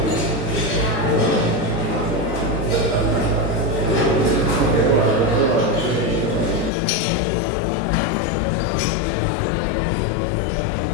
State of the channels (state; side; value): drops out; right; at 6.7 s